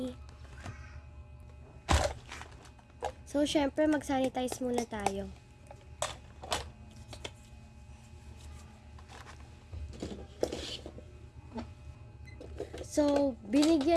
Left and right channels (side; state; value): both; identical; correlation 1.00